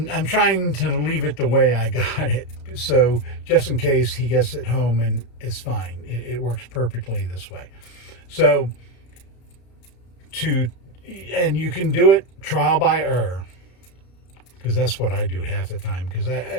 trying to leave it the way I got it, so just in case he gets it home and it's fine. It works perfectly this way. So and you can do it trial by error, because that's what I do half the time, because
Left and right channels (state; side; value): late; right; 33 ms